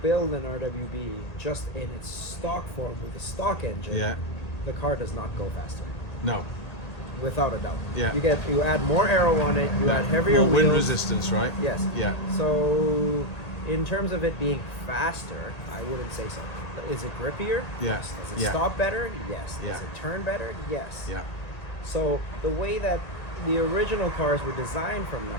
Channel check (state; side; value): late; right; 1.8 ms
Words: build an RWB just in its stock form with a stock engine, Yeah. the car does not go faster, No. without a doubt. Yeah. You add more aero on it, you add heavier More wheels. wind resistance, right? Yes. Yeah. So, in terms of it being faster, I wouldn't say so. Is it grippier? Yeah. Yes. Does it Yeah. stop better? Yes. Yeah. Does it turn better? Yes. Yeah. So the way that the original cars were designed from